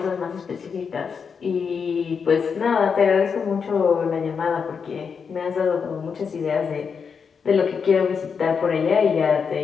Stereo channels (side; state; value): right; quieter; 6.1 dB